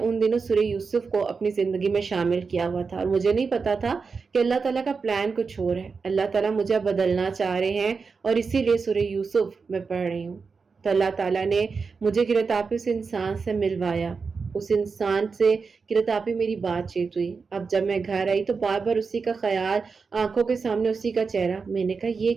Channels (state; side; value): quieter; left; 5.0 dB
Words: دنوں سورہ یوسف کو اپنی زندگی میں شامل کیا ہوا تھا اور مجھے نہیں پتا تھا کہ اللہ تعالیٰ کا پلان کچھ اور ہے۔ اللہ تعالیٰ مجھے بدلنا چاہ رہے ہیں اور اسی لیے سورہ یوسف میں پڑھ رہی ہوں۔ تو اللہ تعالیٰ نے مجھے قرۃ آپ ہی اس انسان سے ملوایا، اس انسان سے قرۃ آپ ہی میری بات چیت ہوئی۔ اب جب میں گھر آئی تو بار بار اسی کا خیال، آنکھوں کے سامنے اسی کا چہرہ۔ میں نے کہا